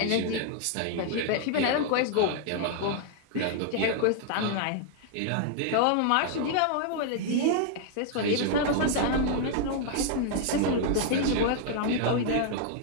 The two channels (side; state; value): both; different; correlation 0.00